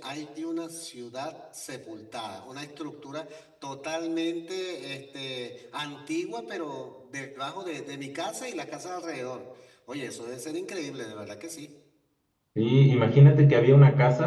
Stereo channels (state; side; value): identical; both; correlation 1.00